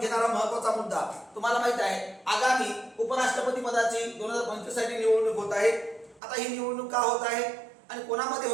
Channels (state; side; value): drops out; left; at 6.2 s